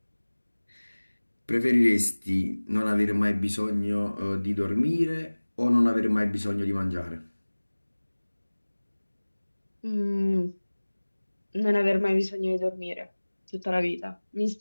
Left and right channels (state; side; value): inverted; both; correlation -1.00